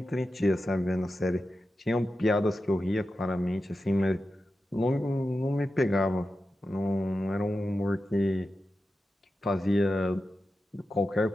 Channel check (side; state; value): both; normal; correlation 0.91